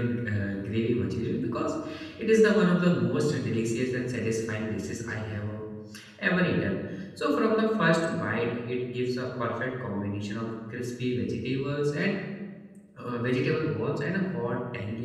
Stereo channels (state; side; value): identical; both; correlation 1.00